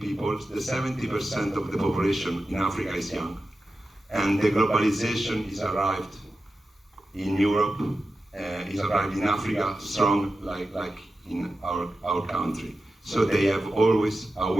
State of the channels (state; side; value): normal; both; correlation 0.92